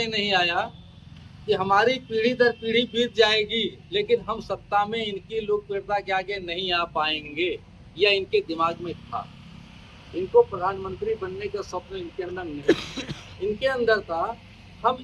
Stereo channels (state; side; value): identical; both; correlation 1.00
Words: नहीं आया कि हमारी पीढ़ी दर पीढ़ी बीत जाएगी लेकिन हम सत्ता में इनकी लोकप्रियता के आगे नहीं आ पाएंगे, यह इनके दिमाग में था। इनको प्रधानमंत्री बनने का स्वप्न इनके अंदर नहीं, इनके अंदर था